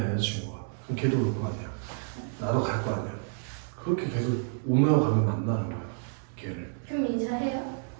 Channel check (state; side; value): silent; left; 58 dB below the other